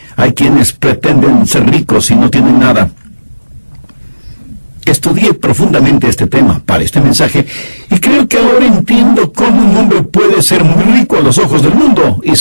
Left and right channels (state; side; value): inverted; both; correlation -1.00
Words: hay quienes pretenden ser ricos y no tienen nada? Estudié profundamente este tema para este mensaje y creo que ahora entiendo cómo un hombre puede ser muy rico a los ojos del mundo y